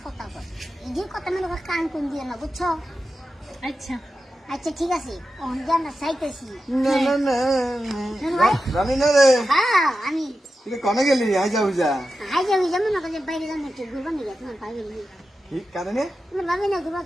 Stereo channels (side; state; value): both; normal; correlation 0.91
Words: কথা কয় এই যে কথা মনে করে কান কোন দিয়ে না বুঝছো? আচ্ছা আচ্ছা ঠিক আছে অন্ধে আমরা চাইতেছি না না না রানী না রে হ্যাঁ আমি তুই কমে গেলি আই যা বুঝা হাই যাবি যেমন না যে বাইরে যান একটু ঘুরবা নিয়ে তোমার ভাবি নিয়ে ঠিক কারণে তোমার ভাবি না ঘুরবা